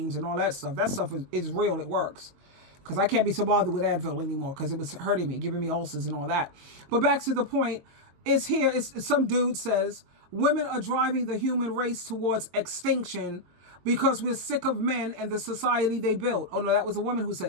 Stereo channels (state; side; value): late; left; 22 ms